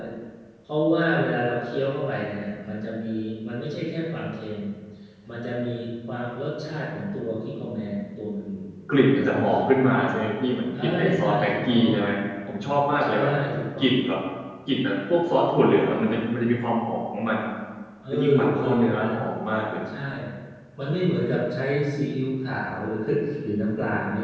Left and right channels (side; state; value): both; identical; correlation 1.00